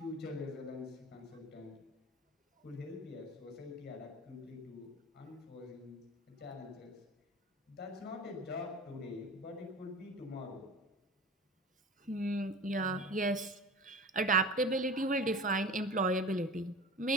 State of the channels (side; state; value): both; normal; correlation 0.35